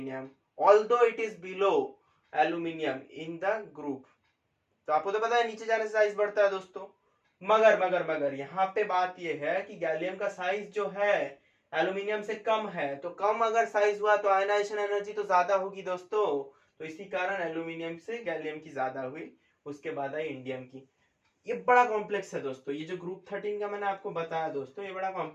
although it is below aluminium in the group. तो आपको तो पता है नीचे जाने से साइज बढ़ता है दोस्तों, मगर यहाँ पे बात ये है कि गैलियम का साइज जो है एल्यूमिनियम से कम है, तो कम अगर साइज हुआ तो आयनाइजेशन एनर्जी तो ज्यादा होगी दोस्तों। तो इसी कारण एल्यूमिनियम से गैलियम की ज्यादा हुई, उसके बाद आई इंडियम की। ये बड़ा कॉम्प्लेक्स है दोस्तों, ये जो ग्रुप 13 का मैंने आपको बताया दोस्तों, ये बड़ा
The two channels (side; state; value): both; identical; correlation 1.00